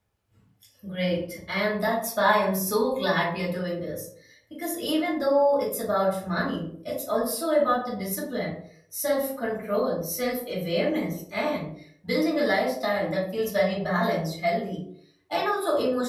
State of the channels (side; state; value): both; identical; correlation 1.00